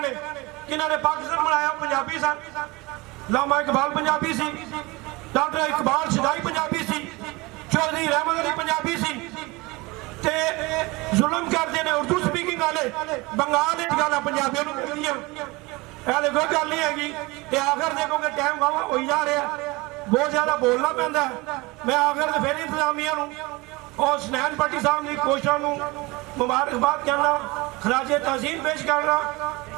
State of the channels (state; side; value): quieter; left; 23.7 dB